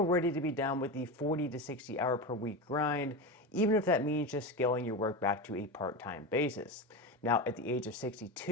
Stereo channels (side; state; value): both; normal; correlation 0.20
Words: ready to be done with the 40 to 60 hour per week grind, even if that means just scaling your work back to a part-time basis. Now, at the age of